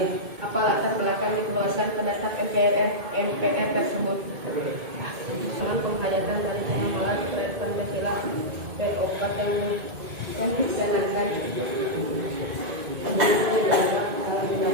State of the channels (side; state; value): left; late; 2.2 ms